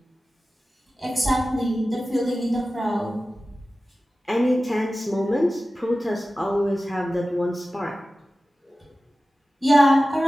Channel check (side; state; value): both; normal; correlation 0.95